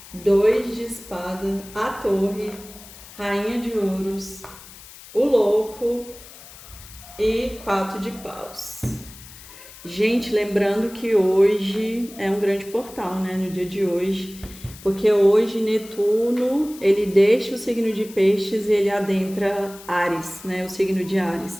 2 de espada, a torre, rainha de ouros, o louco e 4 de paus. Gente, lembrando que hoje é um grande portal, né, no dia de hoje, porque hoje Netuno, ele deixa o signo de Peixes e ele adentra Áries, né, o signo de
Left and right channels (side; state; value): left; noise; hiss, 18 dB below the sound